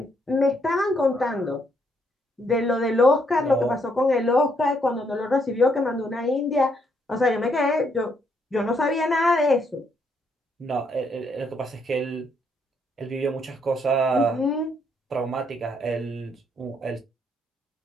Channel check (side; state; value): both; normal; correlation 0.73